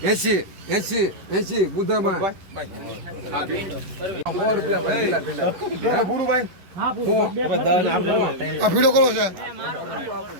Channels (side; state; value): left; late; 11 ms